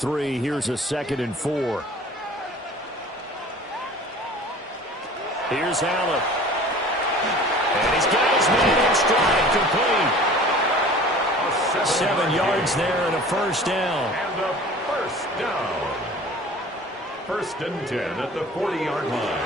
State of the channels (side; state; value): both; normal; correlation 0.45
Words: here's a 2nd and 4. Here's Allen. And he's got his man in stride, complete. 7 yards there and a first down. And a first down. 1st and 10 at the 40-yard line.